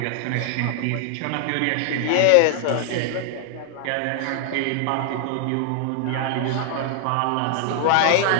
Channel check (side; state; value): both; different; correlation 0.00